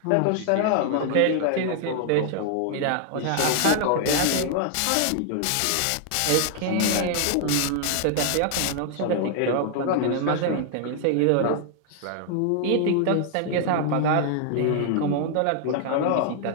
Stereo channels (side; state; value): both; different; correlation 0.00